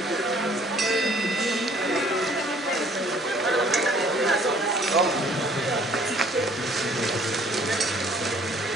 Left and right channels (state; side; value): normal; both; correlation 0.58